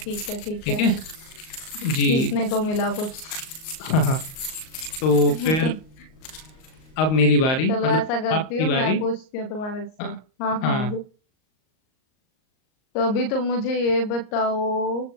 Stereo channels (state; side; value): late; right; 38 ms